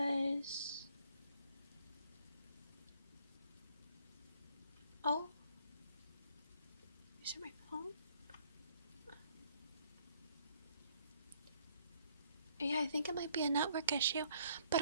Oh? Is it my phone? Yeah, I think it might be a network issue, but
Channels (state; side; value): inverted; both; correlation -0.65